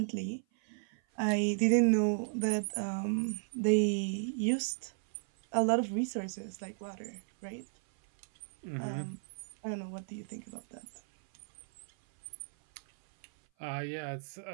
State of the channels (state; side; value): silent; left; 55 dB below the other